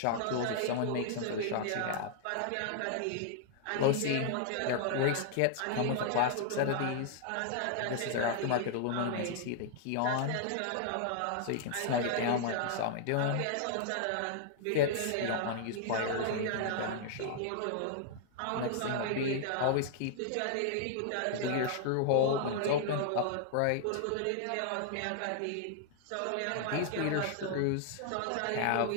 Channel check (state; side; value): different; both; correlation -0.01